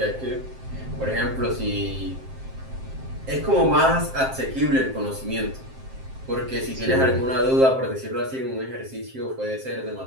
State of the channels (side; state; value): left; late; 7.6 ms